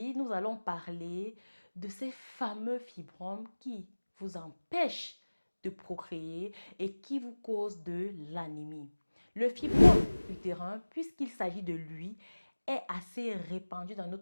nous allons parler de ces fameux fibromes qui vous empêchent de procréer et qui vous causent de l'anémie. Le fibrome utérin, puisqu'il s'agit de lui, est assez répandu dans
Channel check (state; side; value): inverted; both; correlation -1.00